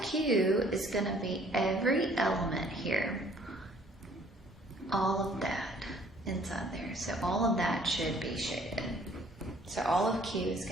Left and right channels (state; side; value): normal; both; correlation 0.58